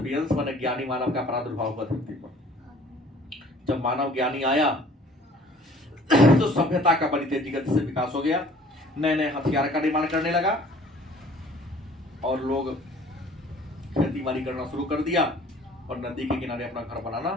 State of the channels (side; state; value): both; normal; correlation 0.52